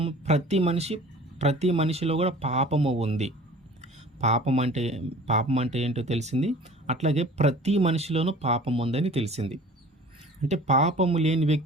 ప్రతి మనిషిలో కూడా పాపము ఉంది. పాపం అంటే ఏంటో తెలిసింది. అట్లాగే ప్రతి మనిషిలోనూ పాపం ఉందని తెలిసింది. అంటే పాపము లేని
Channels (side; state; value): both; normal; correlation 0.45